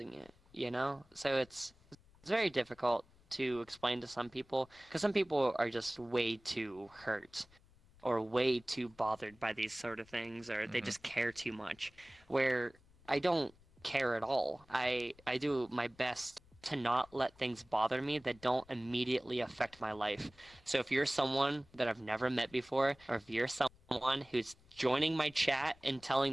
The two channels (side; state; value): left; noise; rumble, 28 dB below the sound